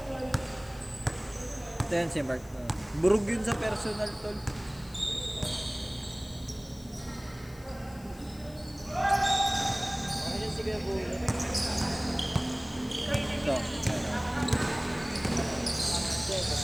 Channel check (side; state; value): left; noise; hiss, 23 dB below the sound